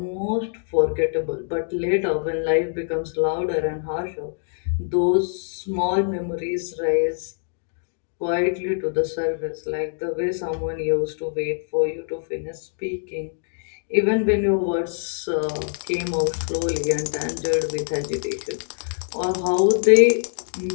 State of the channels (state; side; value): silent; right; digital silence